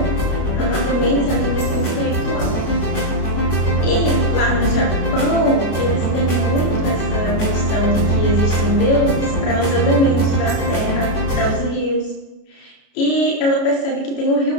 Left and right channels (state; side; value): late; right; 33 ms